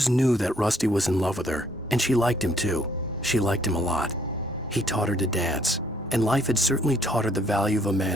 knew that Rusty was in love with her, and she liked him too. She liked him a lot. He taught her to dance, and life had certainly taught her the value of a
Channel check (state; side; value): normal; both; correlation 0.65